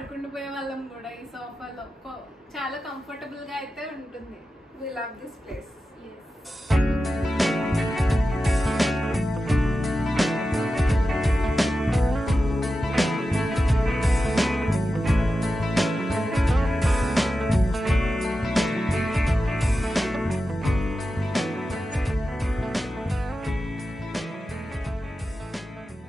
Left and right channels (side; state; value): both; normal; correlation 0.92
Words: వాళ్ళం కూడా ఈ సోఫాలో. చాలా కంఫర్టబుల్ గా అయితే ఉంటుంది. We love this place.